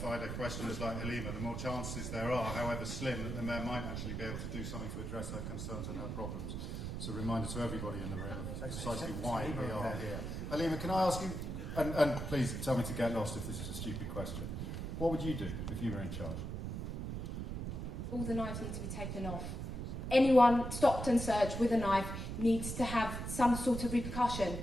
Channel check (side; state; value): right; noise; rumble, 4 dB below the sound